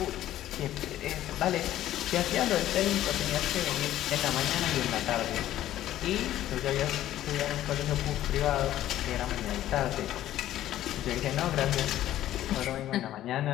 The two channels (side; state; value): right; quieter; 13.2 dB